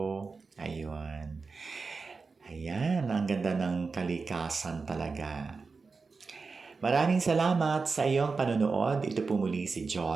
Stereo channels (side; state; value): left; quieter; 4.5 dB